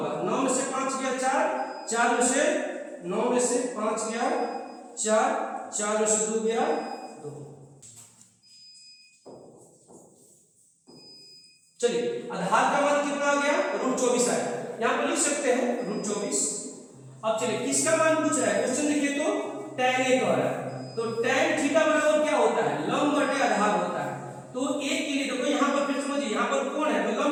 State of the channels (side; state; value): both; identical; correlation 1.00